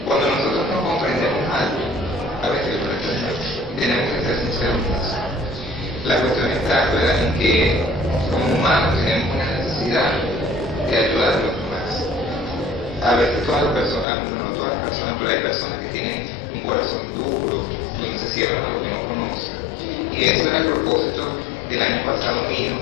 cuando nosotros no comprendemos algo, a veces tenemos que ser sinceros en eso. La cuestión está, ¿verdad?, en que como humanos tenemos una necesidad de ayudar a los demás. A veces todas las personas, no todas las personas, pero hay personas que tienen un corazón duro, donde se cierran a lo que no conocen. Y eso era el propósito del año pasado mío,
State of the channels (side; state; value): right; drops out; at 14.1 s